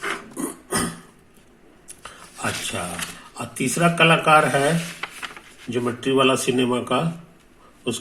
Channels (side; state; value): both; identical; correlation 1.00